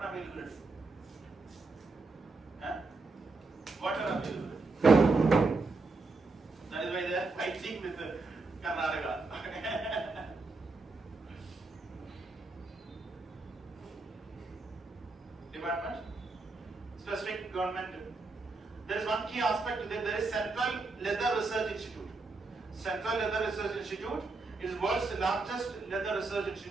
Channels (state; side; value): quieter; left; 3.7 dB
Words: availability. Huh? Water availability. That is why they are fighting with Karnataka. Department, specific government. There is one key aspect to that. There is Central Leather Research Institute. Central Leather Research Institute is world's largest leather research